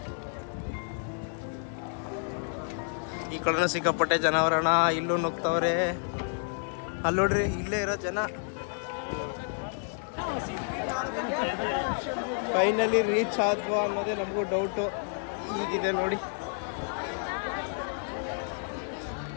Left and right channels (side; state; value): right; silent; 58 dB below the other